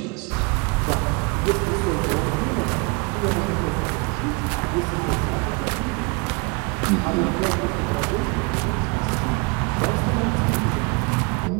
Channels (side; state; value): left; quieter; 29.7 dB